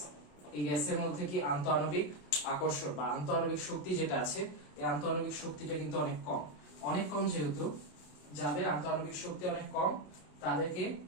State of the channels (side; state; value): right; late; 27 ms